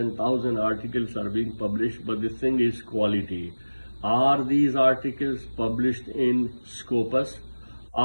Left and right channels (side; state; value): both; inverted; correlation -1.00